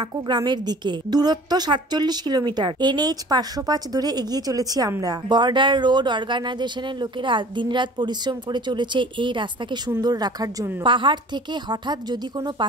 গ্রামের দিকে। দূরত্ব 47 কিলোমিটার। NH 505 ধরে এগিয়ে চলেছি আমরা। বর্ডার রোড অর্গানাইজেশনের লোকেরা দিনরাত পরিশ্রম করে চলেছে এই রাস্তাকে সুন্দর রাখার জন্য। পাহাড় থেকে হঠাৎ যদি কোনো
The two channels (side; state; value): both; normal; correlation 0.46